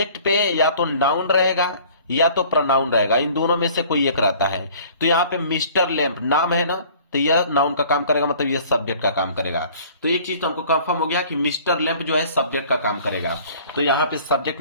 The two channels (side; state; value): both; inverted; correlation -0.51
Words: पे या तो नाउन रहेगा या तो प्रोनाउन रहेगा, इन दोनों में से कोई एक रहता है। तो यहाँ पे मिस्टर लैम्प नाम है ना, तो यह नाउन का काम करेगा, मतलब यह सब्जेक्ट का काम करेगा। तो एक चीज तो हमको कंफर्म हो गया कि मिस्टर लैम्प जो है सब्जेक्ट का काम करेगा। तो यहाँ पे सब्जेक्ट